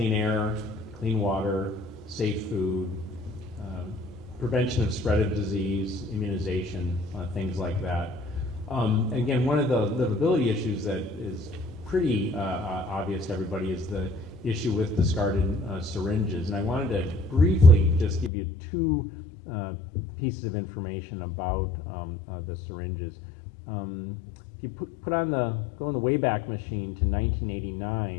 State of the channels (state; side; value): drops out; right; at 18.3 s